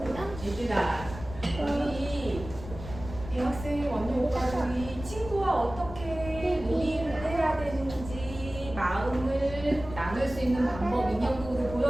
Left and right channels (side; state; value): left; noise; rumble, 12 dB below the sound